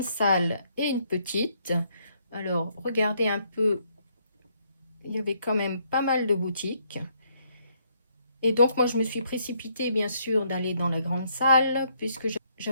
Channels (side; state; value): both; inverted; correlation -0.71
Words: salle et une petite. Alors, regardez un peu, il y avait quand même pas mal de boutiques. Et donc, moi, je me suis précipitée, bien sûr, d'aller dans la grande salle, puisque